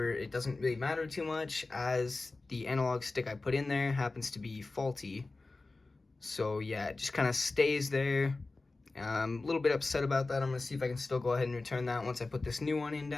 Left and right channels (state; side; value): quieter; right; 3.4 dB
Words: it doesn't really matter too much as the analog stick I put in there happens to be faulty. So yeah, it just kind of stays there. I'm a little bit upset about that. I'm going to see if I can still go ahead and return that once I put this new one in